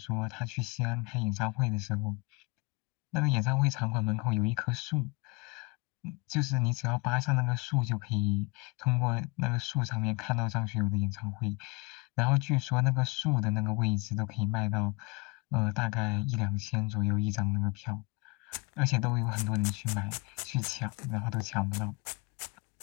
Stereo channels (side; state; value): right; quieter; 27.1 dB